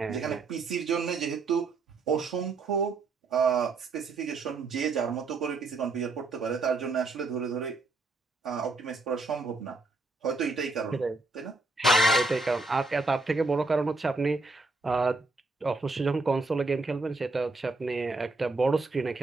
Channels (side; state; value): left; quieter; 3.4 dB